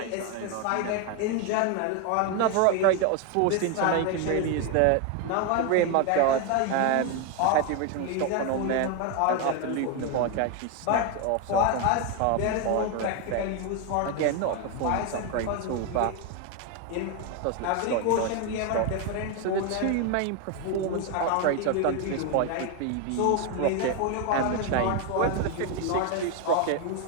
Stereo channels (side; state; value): both; different; correlation 0.01